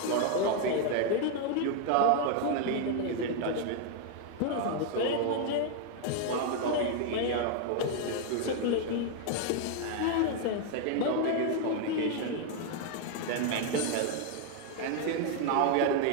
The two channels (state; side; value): different; both; correlation 0.00